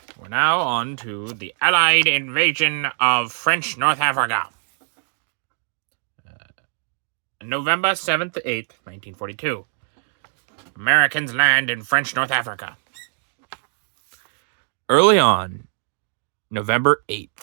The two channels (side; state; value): left; silent; digital silence